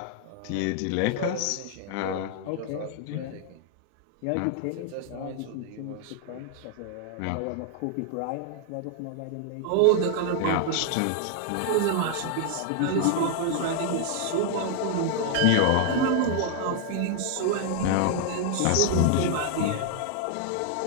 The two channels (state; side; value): different; both; correlation 0.00